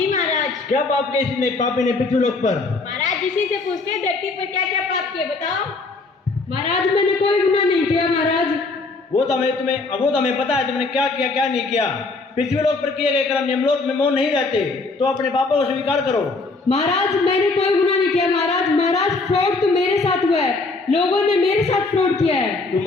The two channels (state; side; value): quieter; right; 3.6 dB